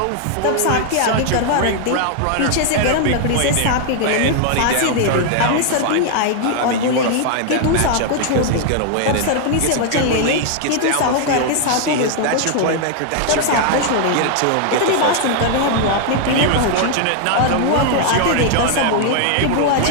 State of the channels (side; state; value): both; different; correlation 0.00